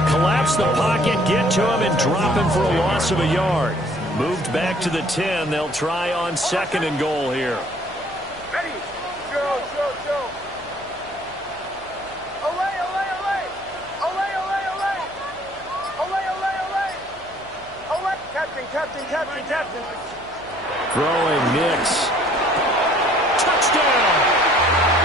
collapse the pocket, get to him, and drop him for a loss of a yard. Moved back to the 10. They'll try on 2nd and goal here. Ready? Go. Away. Captain. Throwing Nix. Touchdown!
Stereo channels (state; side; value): noise; left; hum, 26 dB below the sound